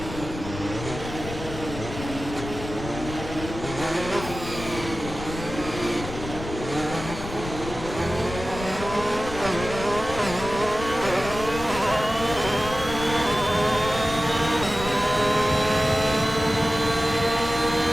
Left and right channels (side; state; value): left; noise; rumble, 10 dB below the sound